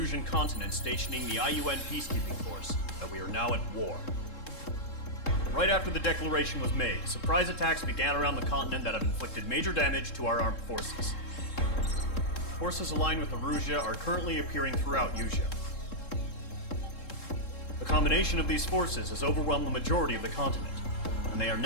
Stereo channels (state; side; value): late; right; 3.7 ms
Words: continent stationing the IUN peacekeeping force that we are now at war. Right after the declaration was made, surprise attacks began around the continent that have inflicted major damage to our armed forces. Forces aligned with Erusia are currently appearing throughout Usia. The combination of these forces has overwhelmed the majority of the continent, and they are